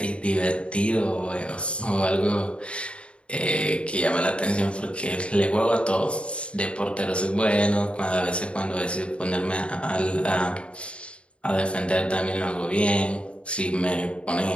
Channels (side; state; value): right; late; 0.058 ms